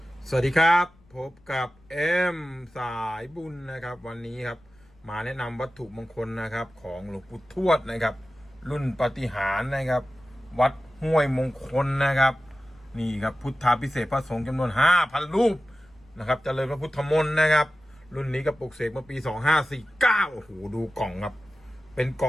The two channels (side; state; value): left; noise; rumble, 30 dB below the sound